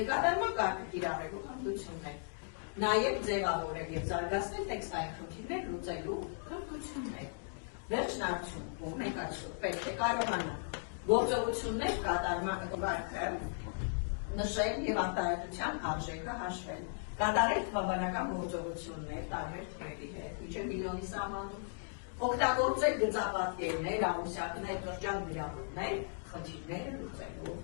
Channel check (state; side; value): silent; right; digital silence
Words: կատարման կարգը կիրառելու հմտություններ, նաև ձևավորել և զարգացնել տեքստային խնդիրներ լուծելու հմտություններ։ Վերջն արդյունքում մենք այսօր պետք է կարողանանք գործողություններ կատարման կարգը նշել և արտահայտության արժեքը հաշվել, կատարել թվաբանական գործողություններ տարբեր թվերի հետ, մինչև միլիոնի սահմանում, օգտագործել գծապատկերներ, ամուսյակներ, շրջան գրավումներ, խնդիրները լուծելու